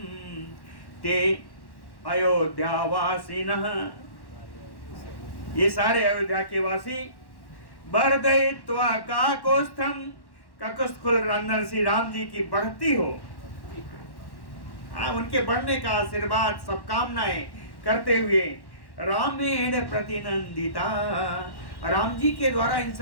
ते अयोध्यावासिनः। ये सारे अयोध्या के वासी बरदयित्वा काकोस्थम, काकोस्थकुल रंधन श्री राम जी की बढ़ती हो, उनके बढ़ने का आशीर्वाद सब कामनाएं करते हुए रामेण प्रतिनंदिता, राम जी के द्वारा इन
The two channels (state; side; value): late; right; 1.1 ms